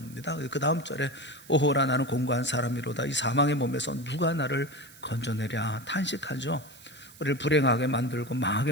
그 다음 절에 오호라 나는 공고한 사람이로다 이 사망의 몸에서 누가 나를 건져내랴 탄식하죠. 우리를 불행하게 만들고 망하게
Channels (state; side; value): noise; right; hiss, 21 dB below the sound